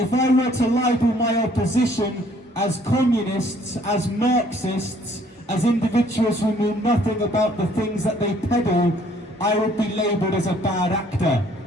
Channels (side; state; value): both; normal; correlation 0.61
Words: I were to label my opposition as communists, as Marxists, as individuals who knew nothing about the things that they peddle, I would be labelled as a bad actor.